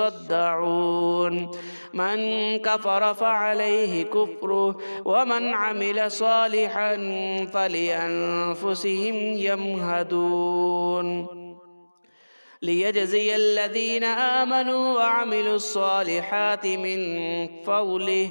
من كفر فعليه كفره ومن عمل صالحا فلأنفسهم يمهدون ليجزي الذين آمنوا وعملوا الصالحات من فضله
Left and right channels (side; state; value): both; inverted; correlation -1.00